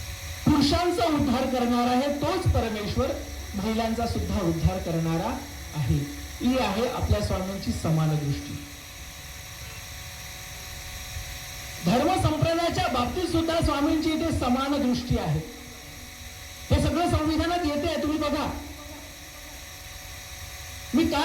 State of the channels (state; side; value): identical; both; correlation 1.00